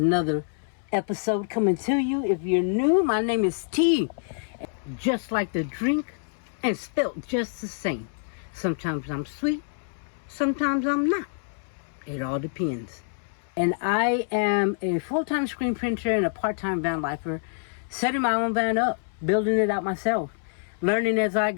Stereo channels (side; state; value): right; silent; 61 dB below the other